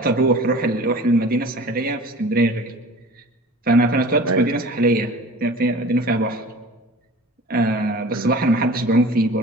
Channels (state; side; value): normal; both; correlation 0.41